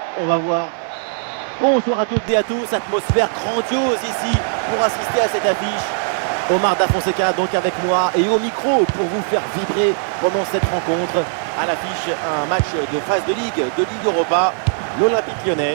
On va voir. Bonsoir à toutes et à tous, atmosphère grandiose ici pour assister à cette affiche. Omar Da Fonseca donc avec moi et au micro pour vous faire vibrer pendant cette rencontre. À l'affiche, un match de phase de Ligue Europa. L'Olympique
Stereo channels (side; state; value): left; silent; 66 dB below the other